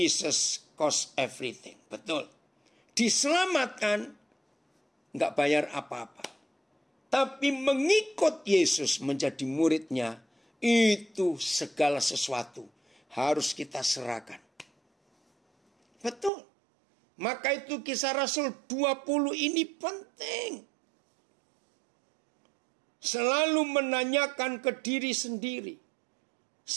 cost everything. Betul. Diselamatkan nggak bayar apa-apa. Tapi mengikut Yesus menjadi muridnya, itu segala sesuatu harus kita serahkan. Betul. Maka itu Kisah Rasul 20 ini penting. Selalu menanyakan ke diri sendiri.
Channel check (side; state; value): left; drops out; at 16.3 s